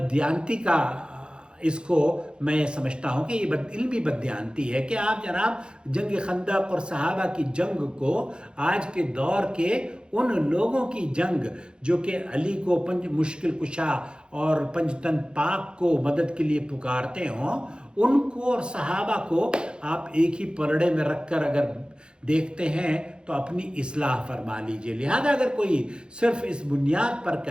کا اس کو میں سمجھتا ہوں کہ یہ علمی بددیانتی ہے کہ آپ جناب جنگ خندق اور صحابہ کی جنگ کو آج کے دور کے ان لوگوں کی جنگ جو کہ علی کو مشکل کشا اور پنجتن پاک کو مدد کے لیے پکارتے ہوں، ان کو اور صحابہ کو آپ ایک ہی پلڑے میں رکھ کر اگر دیکھتے ہیں تو اپنی اصلاح فرما لیجئے۔ لہذا اگر کوئی صرف اس بنیاد پر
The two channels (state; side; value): late; left; 0.050 ms